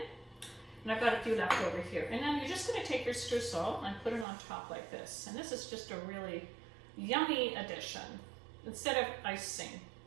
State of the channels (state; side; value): drops out; left; at 4.2 s